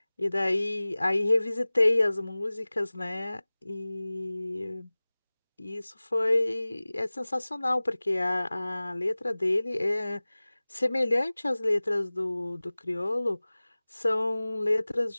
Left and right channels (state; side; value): inverted; both; correlation -0.99